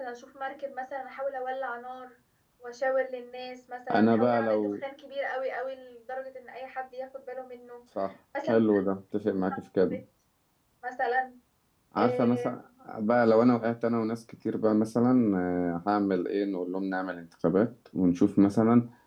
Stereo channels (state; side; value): identical; both; correlation 1.00